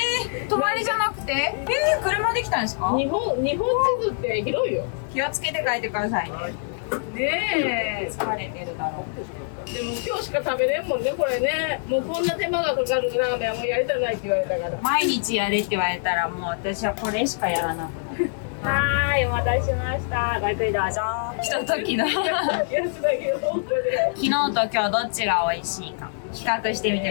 泊まりじゃなくて？車で来たんですか？日本地図って広いよ。気をつけて帰ってくださいね。ねえ。疲れてるだろう。でも今日しか食べれんもんね、これね。もうこんな手間がかかるラーメンはもうやりたないって言われたから。毎日やれって言われたらもう私はこれしかやらなくなる。はーい、お待たせしました。ごゆっくりどうぞ。ひとときの昨やつだけど、本当で。日と今日どっちが美味しいか比較してみて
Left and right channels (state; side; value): silent; right; digital silence